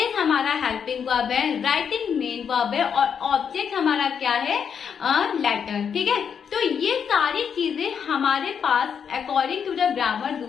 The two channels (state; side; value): quieter; right; 7.2 dB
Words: हमारा हेल्पिंग वर्ब है, राइटिंग मेन वर्ब है, और ऑब्जेक्ट हमारा क्या है? लेटर। ठीक है, तो ये सारी चीजें हमारे पास according to the grammar